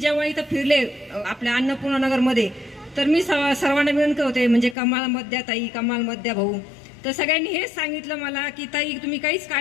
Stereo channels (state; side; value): drops out; right; at 4.8 s